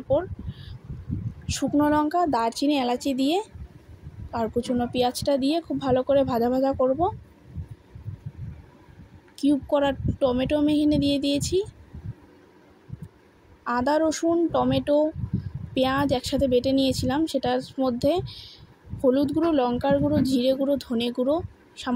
শুকনো লঙ্কা, দারচিনি, এলাচি দিয়ে আর কুচনো পেঁয়াজটা দিয়ে খুব ভালো করে ভাজা ভাজা করব। কিউব করা টমেটো আমি এখানে দিয়ে দিয়েছি। আদা, রসুন, টমেটো, পেঁয়াজ একসাথে বেটে নিয়েছিলাম। সেটার মধ্যে হলুদ গুঁড়ো, লঙ্কার গুঁড়ো, জিরে গুঁড়ো, ধনে গুঁড়ো,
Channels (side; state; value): both; identical; correlation 1.00